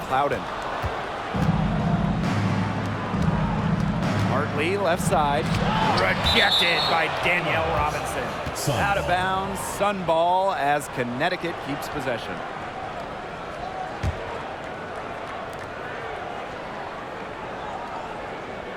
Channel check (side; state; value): both; identical; correlation 1.00